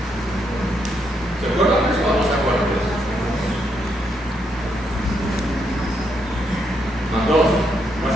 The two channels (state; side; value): normal; both; correlation 0.77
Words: ¿Se acuerdan de eso o no se acuerdan de eso? Más 2,